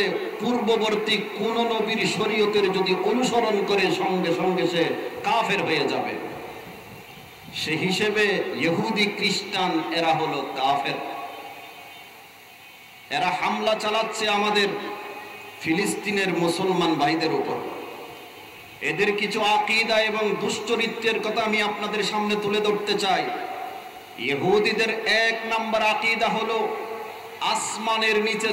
পূর্ববর্তী কোন নবীর শরীয়তের যদি অনুসরণ করে, সঙ্গে সঙ্গে সে কাফের হয়ে যাবে। সে হিসেবে ইহুদি খ্রিস্টান এরা হলো কাফের। এরা হামলা চালাচ্ছে আমাদের ফিলিস্তিনের মুসলমান ভাইদের উপর। এদের কিছু আকীদা এবং দুশ্চরিত্রের কথা আমি আপনাদের সামনে তুলে ধরতে চাই। ইহুদিদের এক নাম্বার আকীদা হলো আসমানের নিচে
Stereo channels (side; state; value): both; identical; correlation 1.00